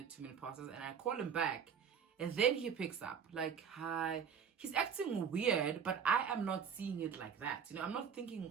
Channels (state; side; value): quieter; left; 7.2 dB